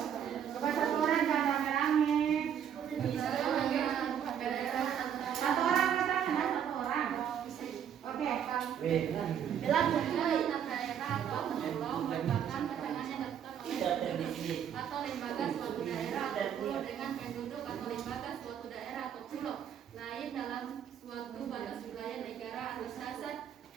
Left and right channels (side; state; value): left; quieter; 8.9 dB